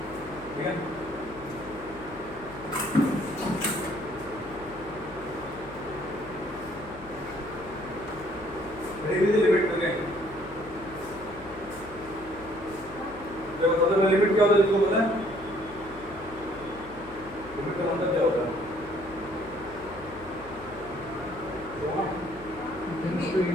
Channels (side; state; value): left; noise; hum, 18 dB below the sound